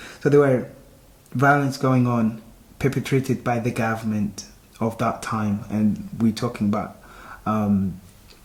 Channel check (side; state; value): both; identical; correlation 1.00